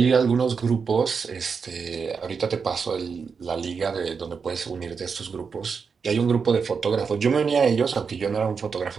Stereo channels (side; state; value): left; quieter; 5.7 dB